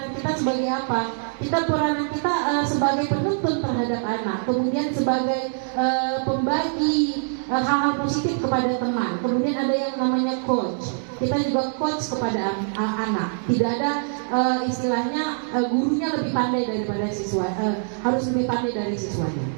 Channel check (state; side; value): silent; left; 63 dB below the other